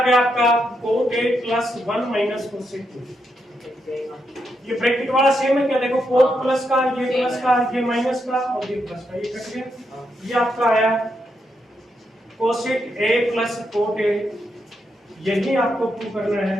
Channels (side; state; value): both; normal; correlation 0.81